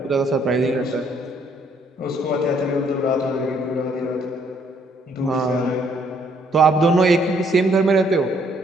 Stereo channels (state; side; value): normal; both; correlation 0.67